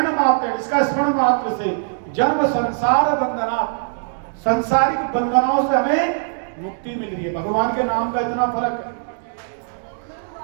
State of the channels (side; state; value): left; silent; digital silence